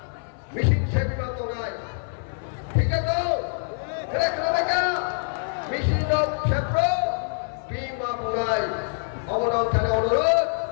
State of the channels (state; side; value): silent; right; 57 dB below the other